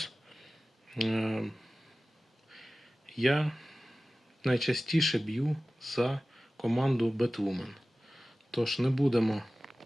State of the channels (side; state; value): both; normal; correlation 0.96